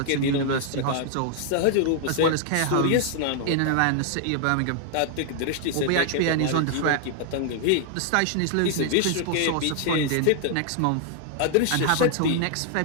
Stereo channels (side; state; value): both; different; correlation 0.00